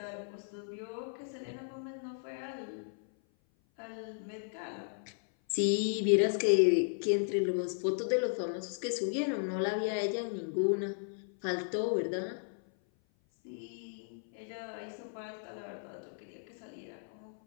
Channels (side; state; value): right; silent; 54 dB below the other